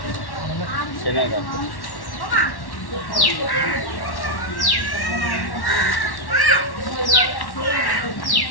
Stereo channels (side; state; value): right; late; 1.1 ms